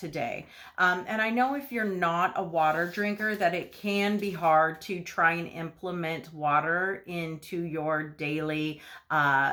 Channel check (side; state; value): both; identical; correlation 1.00